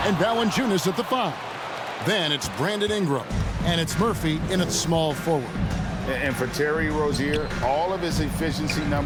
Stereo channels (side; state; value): both; identical; correlation 1.00